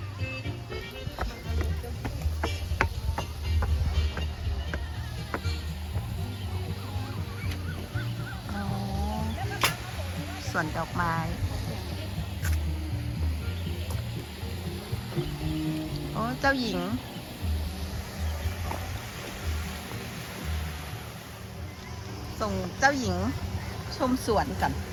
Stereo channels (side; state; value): both; identical; correlation 1.00